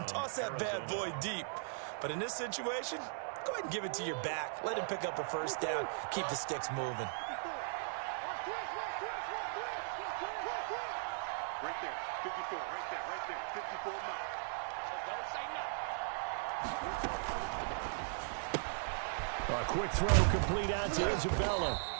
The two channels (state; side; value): silent; left; digital silence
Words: toss that bad boy deep. But in this situation, go ahead and give it to your back. Let him pick up a first down, keep the sticks moving. Right there, 54, right there, 54 miles. Don't say nothing. A quick throw complete out to Isabella.